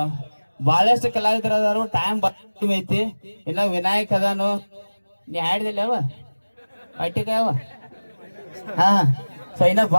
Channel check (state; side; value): inverted; both; correlation -1.00